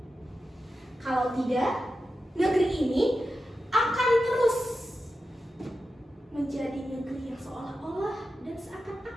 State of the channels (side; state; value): both; normal; correlation 0.91